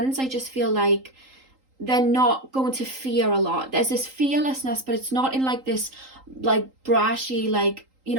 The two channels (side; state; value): left; late; 3.8 ms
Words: I just feel like they're not going to fear a lot. There's this fearlessness, but it's not in like this like brashy, like, you